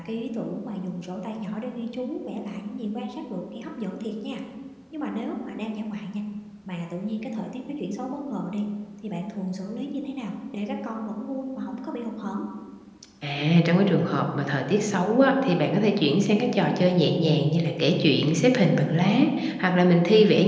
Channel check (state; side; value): identical; both; correlation 1.00